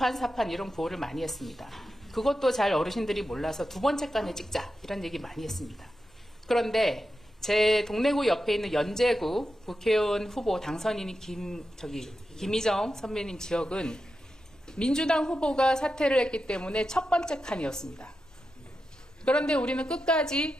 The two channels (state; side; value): normal; both; correlation 0.89